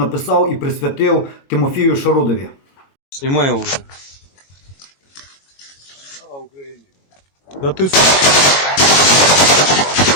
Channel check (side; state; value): right; late; 22 ms